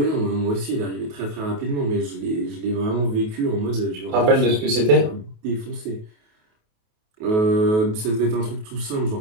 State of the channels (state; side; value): late; left; 28 ms